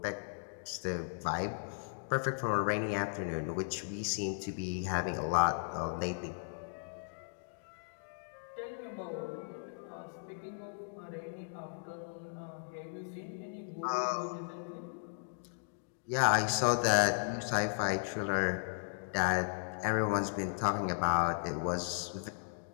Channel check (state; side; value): silent; right; digital silence